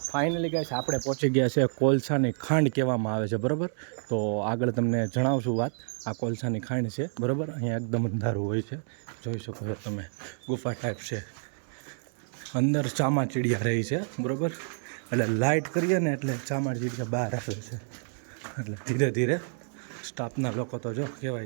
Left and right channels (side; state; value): left; silent; 59 dB below the other